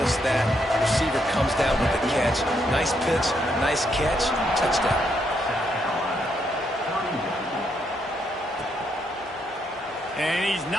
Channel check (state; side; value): normal; both; correlation 0.76